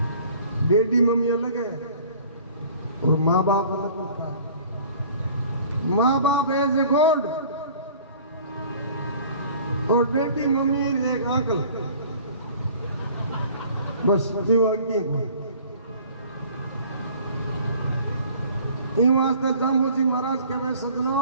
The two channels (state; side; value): inverted; both; correlation -0.49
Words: डैडी मम्मी अलग है और माँ बाप अलग होता है। माँ बाप एज ए गॉड और डैडी मम्मी एक आंकल, बस इन वास्ते जाम्बूजी महाराज कहे